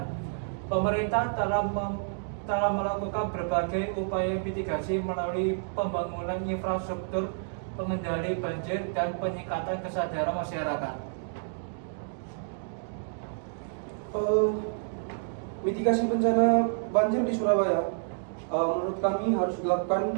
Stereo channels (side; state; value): left; silent; digital silence